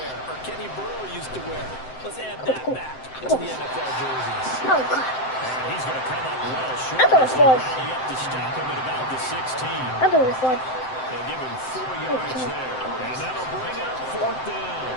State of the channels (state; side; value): late; right; 7.7 ms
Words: or Kenny Burrow used to wear? Let's add that back to the NFL jerseys. Oh, God. And he's going to come up well short. I thought it was fun. Rally up to stop him at about the 16. I thought it was fun. They'll give him 4 yards there. And that'll bring up 4th down.